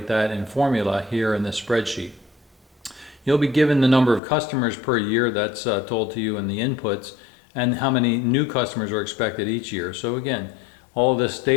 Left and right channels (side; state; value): right; drops out; at 4.2 s